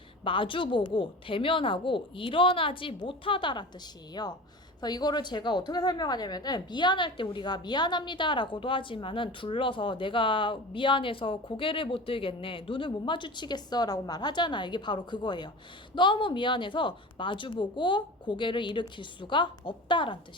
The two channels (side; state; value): both; normal; correlation 0.34